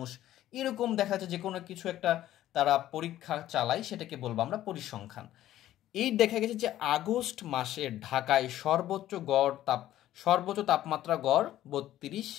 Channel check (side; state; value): right; quieter; 13.3 dB